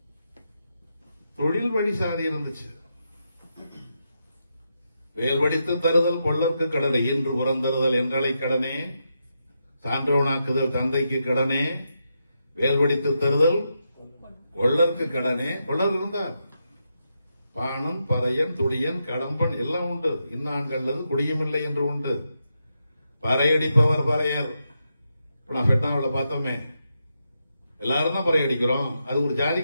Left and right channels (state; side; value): inverted; both; correlation -0.84